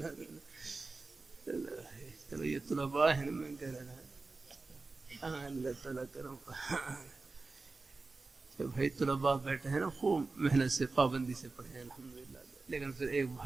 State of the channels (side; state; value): left; quieter; 3.7 dB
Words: چلو یہ طلباء ہیں، میں کہہ رہا ہوں اللہ تعالیٰ کرم. بھائی طلباء بیٹھے ہیں نا، خوب محنت سے پابندی سے پڑھے ہیں الحمدللہ. لیکن پھر ایک